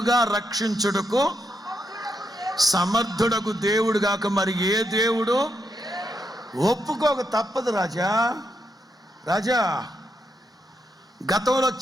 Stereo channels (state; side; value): normal; both; correlation 0.81